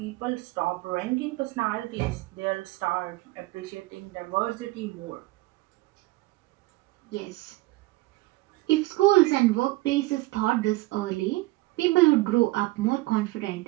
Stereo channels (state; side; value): quieter; left; 20.2 dB